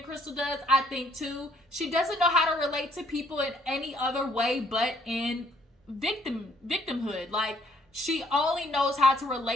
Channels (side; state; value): both; normal; correlation 0.65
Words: Crystal does. I think too, she doesn't know how to relate to people in any other way but in victimhood. Like, she only knows how to